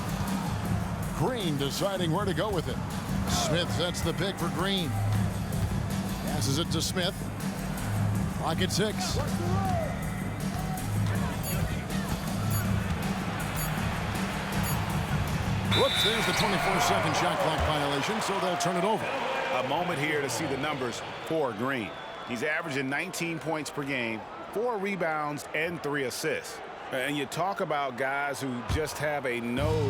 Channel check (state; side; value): identical; both; correlation 1.00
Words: Green deciding where to go with it. Smith sets the pick for Green. Passes it to Smith. Clock at 6. Whoops, there's the 24-second shot clock violation, so they'll turn it over. A moment here to see the numbers for Green. He's averaging 19 points per game, 4 rebounds, and 3 assists. And you talk about guys who just have a